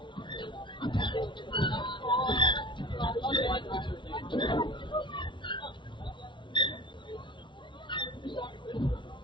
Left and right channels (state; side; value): late; right; 0.23 ms